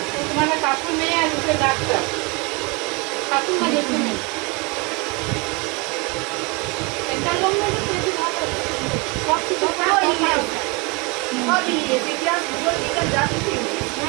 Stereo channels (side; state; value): left; quieter; 28.7 dB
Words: তোমার কাকুর মেয়ে আর দুটো ডাক্তার, কাকুর না দেখতে নেই সেন্ট্রাল গভর্নমেন্ট বেশি ভালো সব কিছু সব ইংলিশ ইতিহাস ভূগোল বিজ্ঞান যা কিছু না